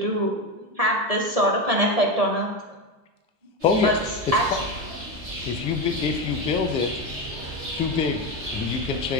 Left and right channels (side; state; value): left; late; 1.7 ms